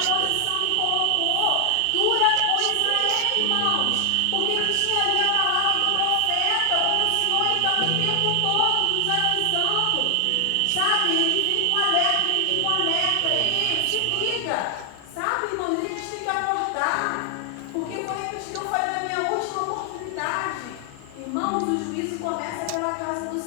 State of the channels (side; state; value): both; different; correlation 0.00